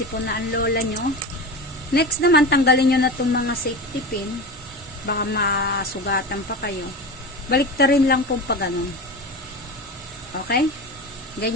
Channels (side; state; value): both; normal; correlation 0.26